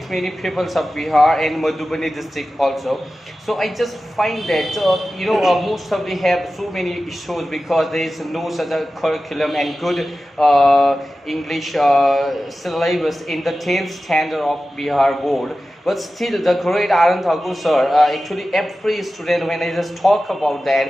many people of Bihar and Madhubani district also. So I just find that most of they have so many issues because there is no such a curriculum and good English syllabus in the 10th standard of Bihar board. But still, the great R N Thakur sir, actually every student, when I just talk about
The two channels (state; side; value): normal; both; correlation 0.94